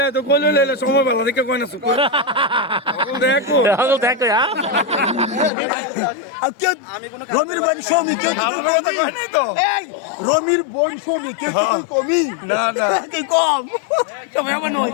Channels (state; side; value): drops out; right; at 5.5 s